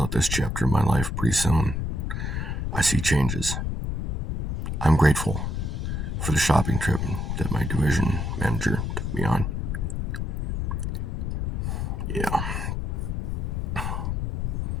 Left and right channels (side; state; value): left; noise; rumble, 1 dB below the sound